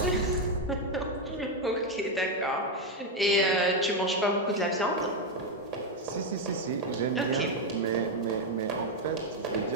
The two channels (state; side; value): normal; both; correlation 0.05